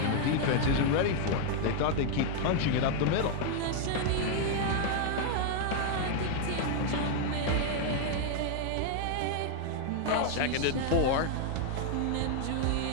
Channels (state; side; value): different; both; correlation 0.00